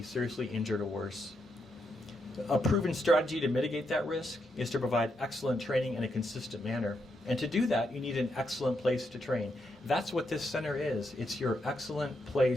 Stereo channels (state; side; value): normal; both; correlation 0.81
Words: seriously injured or worse. A proven strategy to mitigate that risk is to provide excellent training in a consistent manner. And to do that, you need an excellent place to train. That's what this center is. It's your excellent